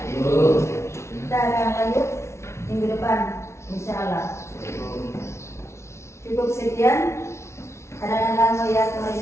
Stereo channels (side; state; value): right; late; 0.13 ms